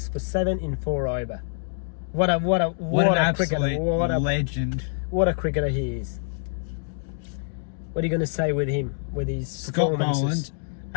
for 7 in 4 over. What an absolute legend! What a cricketer he is. What are you going to say with him, with his Scott performances? Boland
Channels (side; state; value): right; silent; digital silence